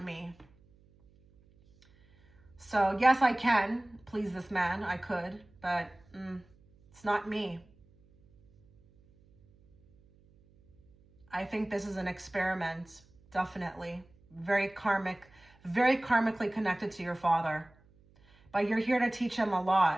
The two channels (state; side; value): noise; right; hum, 30 dB below the sound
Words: me. So yes, I can please this man. I could, but it's not me. I think this is an experiment, definitely. Very karmically connected to your father. But you're here to teach him a